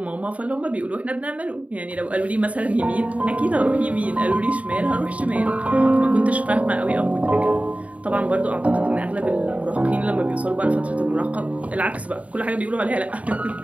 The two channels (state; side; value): late; left; 0.067 ms